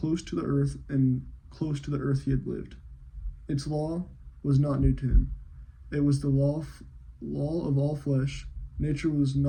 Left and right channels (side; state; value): both; identical; correlation 1.00